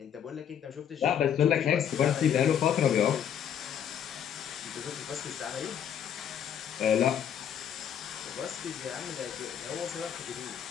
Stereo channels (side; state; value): right; quieter; 8.9 dB